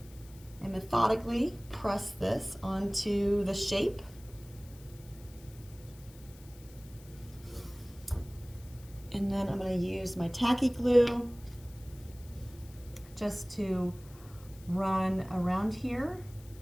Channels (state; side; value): noise; left; hiss, 23 dB below the sound